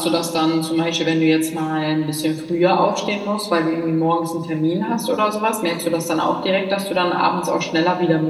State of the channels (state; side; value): identical; both; correlation 1.00